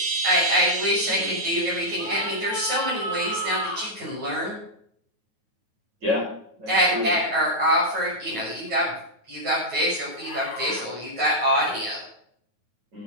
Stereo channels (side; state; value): left; late; 9.2 ms